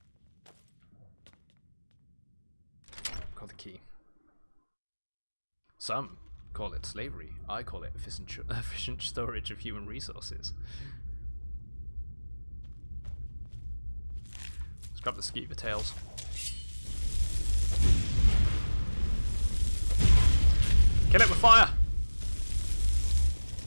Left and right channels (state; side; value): inverted; both; correlation -1.00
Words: Got the key. Some call it slavery. I call it efficient storage of human resources. Let's grab the skeever tails. Kill it with fire!